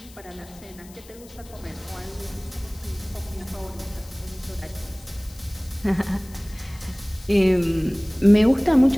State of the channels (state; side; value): noise; left; hiss, 22 dB below the sound